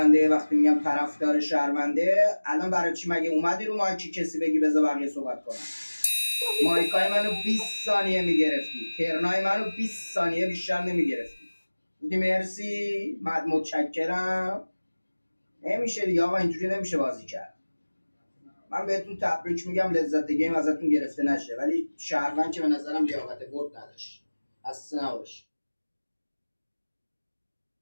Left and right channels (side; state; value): both; inverted; correlation -1.00